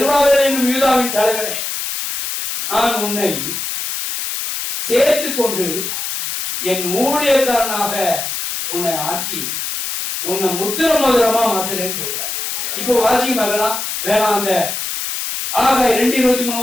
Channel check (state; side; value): noise; left; hiss, 4 dB below the sound